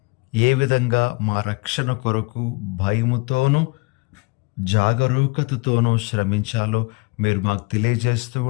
ఏ విధంగా మా రక్షణ కొరకు భయముతోనూ జాగరూకతతోనూ శ్రమించాలో మీరు మాకు తెలియజేస్తూ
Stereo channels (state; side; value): quieter; right; 28.3 dB